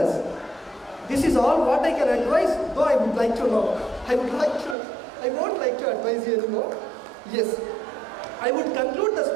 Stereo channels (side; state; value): left; drops out; at 4.8 s